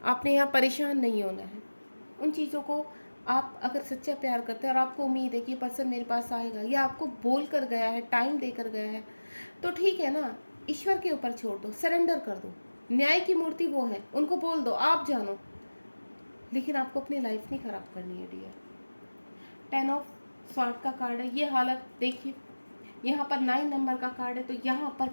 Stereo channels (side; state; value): both; inverted; correlation -1.00